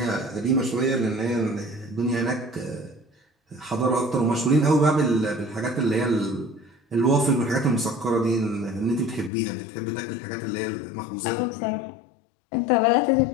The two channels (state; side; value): drops out; right; at 9.3 s